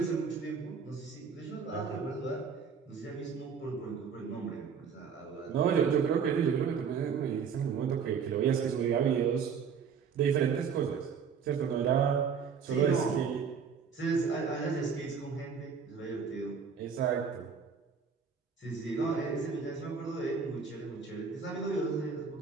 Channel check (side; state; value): left; quieter; 6.3 dB